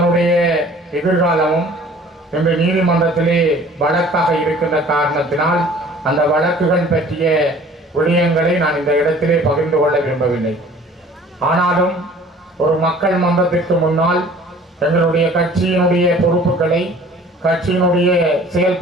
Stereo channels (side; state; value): both; normal; correlation 0.50